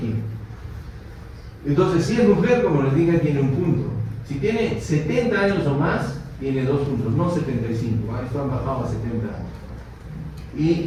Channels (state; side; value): identical; both; correlation 1.00